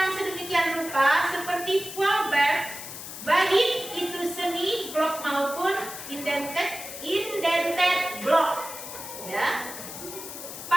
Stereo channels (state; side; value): noise; left; hiss, 10 dB below the sound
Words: sedemikian rupa seperti Flaubert, baik itu semi blok maupun indented blok. Ya.